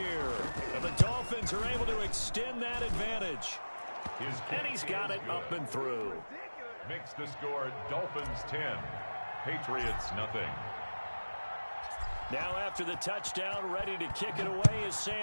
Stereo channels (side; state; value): both; inverted; correlation -1.00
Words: And the Dolphins are able to extend that advantage. And he's got it up and through. Makes the score Dolphins 10, Patriots nothing. Now after the touchdown, ready to kick it away is